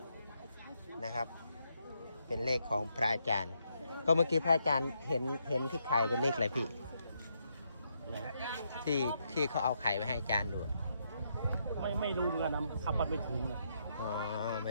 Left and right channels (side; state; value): both; inverted; correlation -0.78